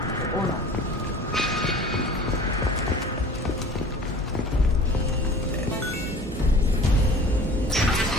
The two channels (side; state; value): both; normal; correlation 0.44